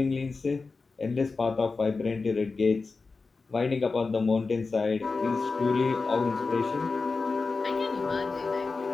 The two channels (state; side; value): quieter; right; 4.2 dB